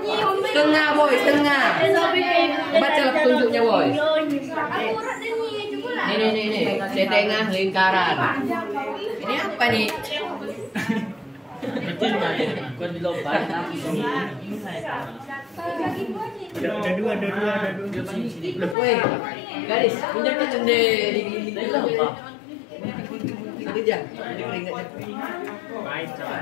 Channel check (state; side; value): drops out; right; at 18.8 s